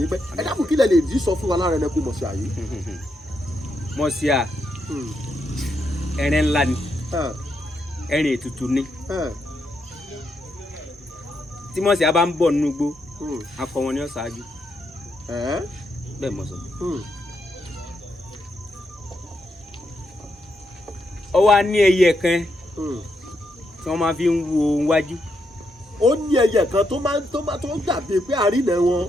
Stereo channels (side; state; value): both; normal; correlation 0.81